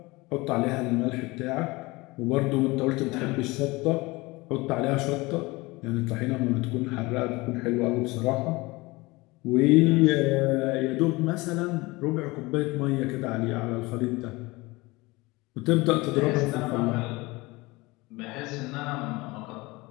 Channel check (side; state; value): right; quieter; 22.8 dB